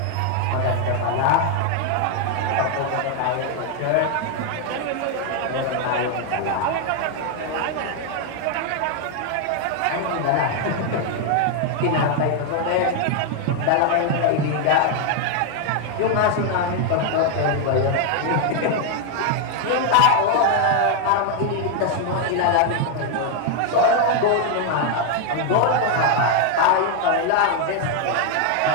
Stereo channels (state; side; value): different; both; correlation 0.01